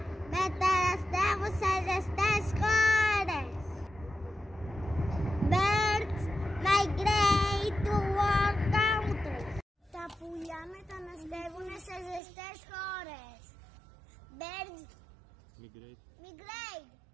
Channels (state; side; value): drops out; left; at 12.2 s